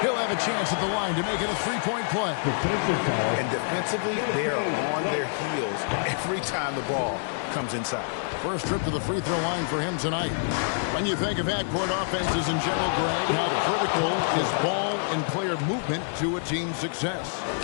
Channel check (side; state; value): right; silent; digital silence